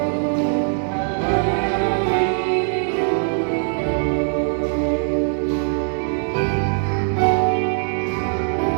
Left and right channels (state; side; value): silent; left; 65 dB below the other